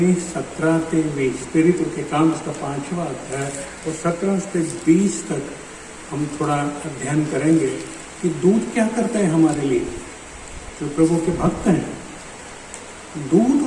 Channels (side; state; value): both; identical; correlation 1.00